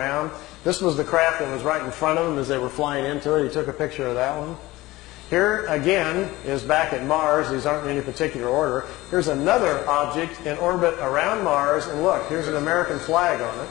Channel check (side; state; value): right; quieter; 18.9 dB